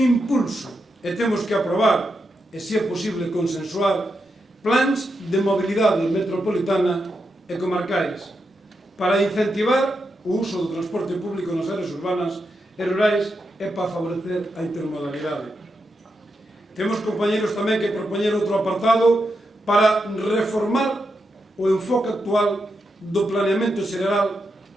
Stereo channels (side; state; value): both; normal; correlation 0.85